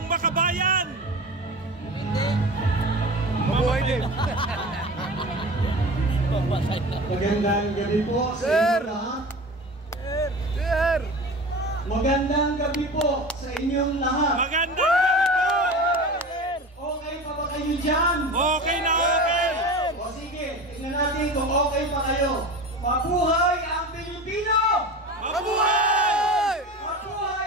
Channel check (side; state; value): both; normal; correlation 0.32